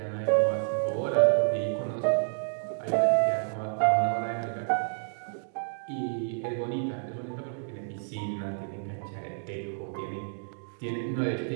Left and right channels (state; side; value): silent; left; digital silence